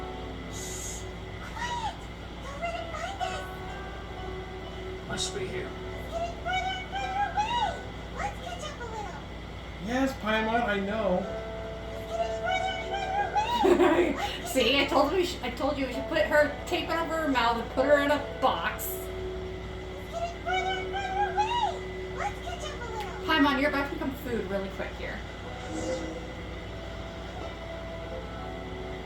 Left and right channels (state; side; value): identical; both; correlation 1.00